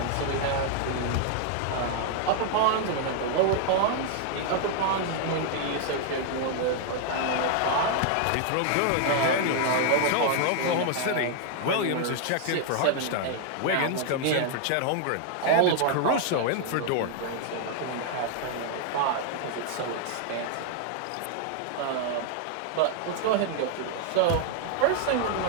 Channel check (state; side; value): different; both; correlation 0.00